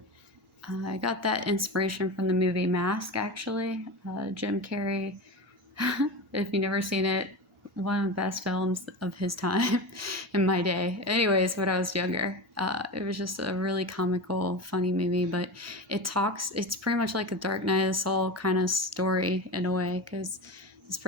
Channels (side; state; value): both; normal; correlation 0.25